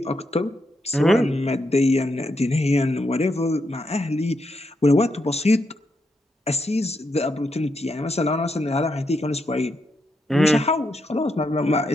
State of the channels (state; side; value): normal; both; correlation 0.81